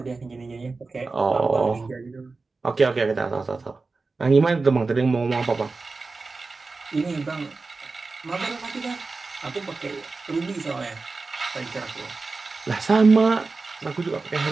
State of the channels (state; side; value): quieter; left; 3.9 dB